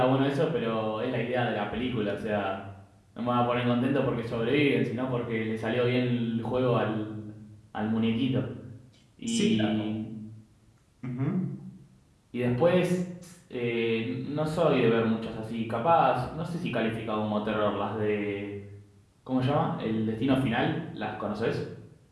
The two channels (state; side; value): identical; both; correlation 1.00